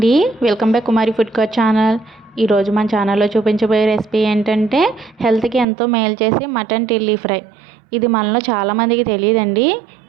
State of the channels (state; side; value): drops out; left; at 5.7 s